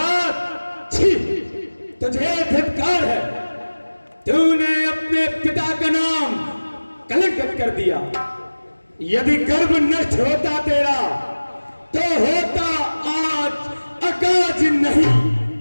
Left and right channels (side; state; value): both; inverted; correlation -1.00